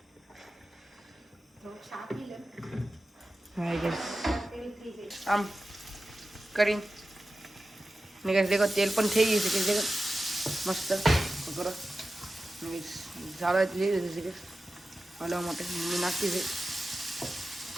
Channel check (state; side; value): normal; both; correlation 0.93